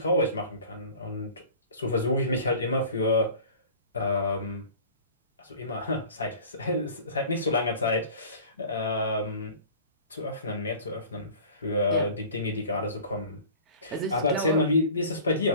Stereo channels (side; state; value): both; inverted; correlation -0.43